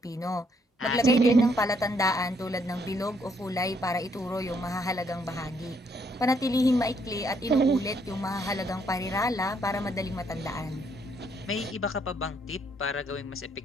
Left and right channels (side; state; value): both; normal; correlation 0.71